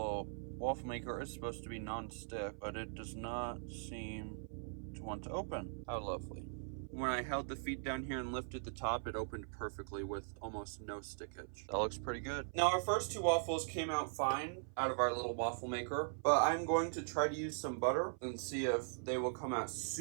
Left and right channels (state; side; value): silent; left; 51 dB below the other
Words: waffle maker is supposed to be non-stick, but it does not seem to want to open. How lovely. When I held the feet down here and lifted the top, it opened perfectly with almost no stickage. That looks pretty good. Now, our first two waffles came out fine out of our little waffle maker, but I'm going to try to use some butter and see if they will come out